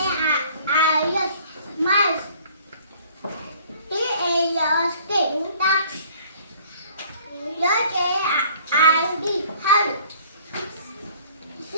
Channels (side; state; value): both; inverted; correlation -0.54